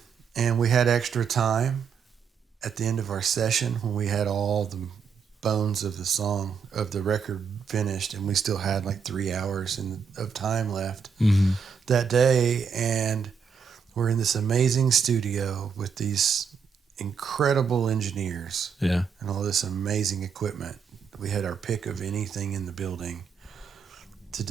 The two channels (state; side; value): quieter; left; 6.2 dB